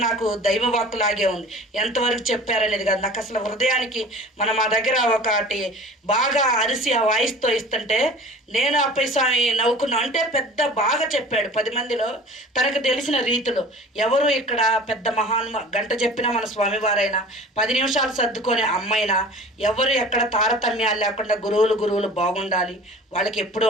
నాకు దైవవాక్కులాగే ఉంది. ఎంతవరకు చెప్పారనేది కాదు, నాకు అసలు హృదయానికి మా దగ్గర ఒకటి బాగా అరిసి ఆ వాయిస్తో ఇస్తుంటే నేను అప్పయ్య స్వామి నవ్వుకున్నా. అంటే పెద్ద బాగా చెప్పాడు 10 మందిలో తనకు తెలిసిన రీతిలో. ఎవరు ఇక్కడ పెద్ద గంట చెప్పినా మన స్వామివారైనా 10 నిమిషాలు సర్దుకొని అమ్మ అమ్మైనా ఎవరు ఎక్కడ తారతమ్యాలు లేకుండా గురువులు బాగుండాలి, వాళ్ళకి ఎప్పుడూ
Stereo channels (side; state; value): both; normal; correlation 0.42